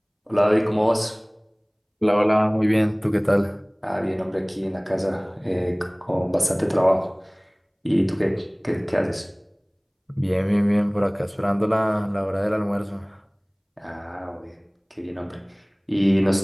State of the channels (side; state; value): both; identical; correlation 1.00